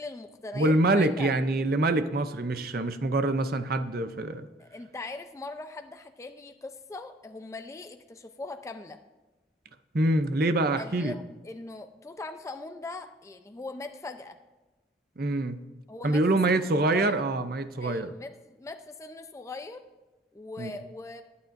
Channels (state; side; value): normal; both; correlation 0.55